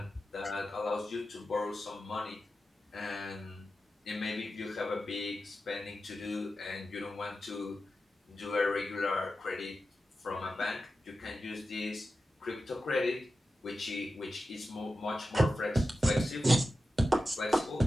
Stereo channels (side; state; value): both; normal; correlation 0.92